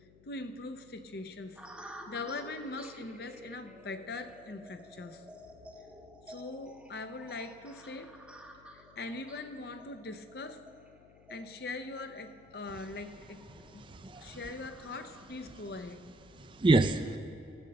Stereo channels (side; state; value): left; noise; hum, 22 dB below the sound